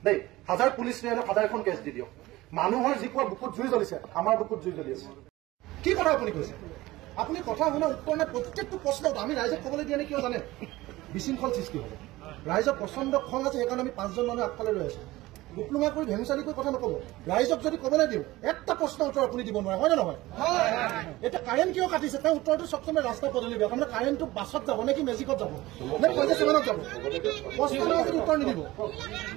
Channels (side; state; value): left; quieter; 18.4 dB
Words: দেই হাজাৰ পুলিচ লৈ হাজাৰ এখন কেছ দি দিয়ক মানুহৰ যি কোৱা বুকুত জুই জ্বলিছে আমাৰ বুকুত জুই জ্বলি আছে কি কথা আপুনি কৈছে আপুনি কথা শুনা উত্তৰ নাই প্ৰত্যেকটো প্ৰশ্নত আমি ৰাইজক ক'বলৈ দিয়া নে কিয় জানে বিশৃংখল সৃষ্টি হ'ব ৰাইজৰ প্ৰচণ্ড খং আছে সেইকাৰণে আমি 5জন মানুহ আগফালে ৰৈ আছো ডিপ্লোমা কৰি ভেঙুচালি কৰি কথা নক'ব ৰাইজক যদি ক'বলৈ দিওঁ এটা প্ৰশ্ন উত্তৰ আপুনি দিব নোৱাৰে হয় নে নহয় এতিয়া কাৰেণ্ট কিয় কাটিছে তেওঁ উত্তৰটো চবচমে ৰাস্তা পদূলি বেয়া তাৰমানে কাৰেণ্টটো বাছত যাব নে কি মেজিকত যাব নে পইচা চিমানত যাব প্ৰশ্ন উত্তৰ নিদিব